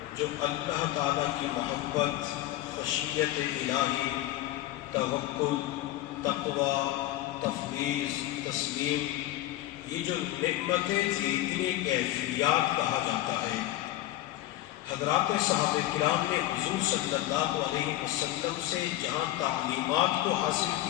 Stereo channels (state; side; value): quieter; right; 15.0 dB